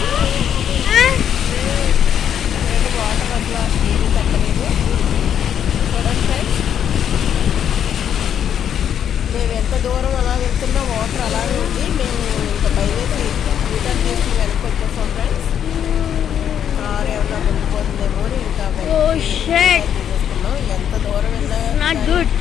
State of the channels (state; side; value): quieter; right; 9.1 dB